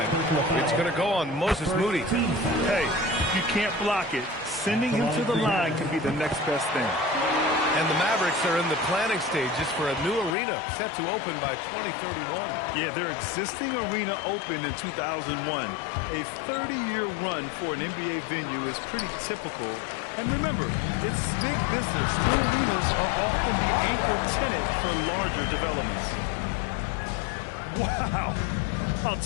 It's going to go on Moses Moody. Hey, if you can't block it, sending him to the line can be the next best thing. And the Mavericks are in the planning stages for a new arena set to open by 2031. Yeah, their existing arena opened in 2001. A 30-year run for an NBA venue is pretty typical. And remember, it's big business. New arenas are often the anchor tenant for larger developments. Wow! I'll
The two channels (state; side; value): drops out; right; at 10.4 s